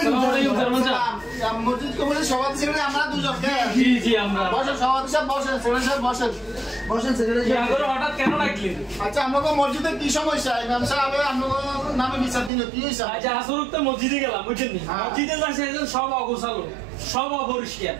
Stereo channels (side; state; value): left; drops out; at 12.5 s